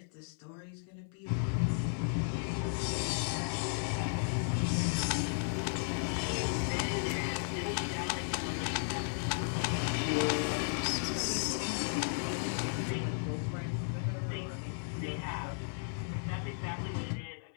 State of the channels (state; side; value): silent; right; 55 dB below the other